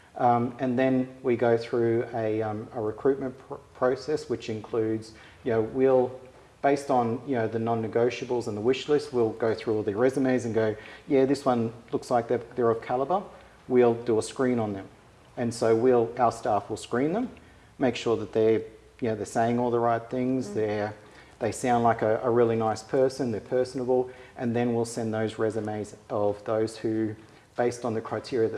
And then we go through a recruitment process, which includes, we'll, based on the non-negotiables and the wish list, we'll go through all the resumes and go, yeah, this one looks like they're of calibre. We'll do a screen on them. And so our staff will screen them, make sure that they're saying all the right things, they sound like a really nice person, they're personable, and then we'll send those resumes of those who, based on the criteria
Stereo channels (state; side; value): identical; both; correlation 1.00